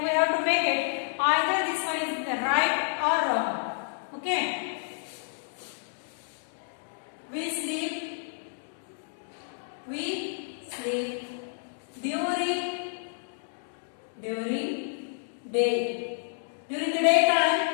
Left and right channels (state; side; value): silent; right; digital silence